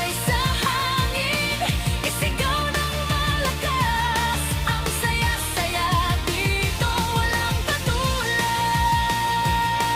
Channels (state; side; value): identical; both; correlation 1.00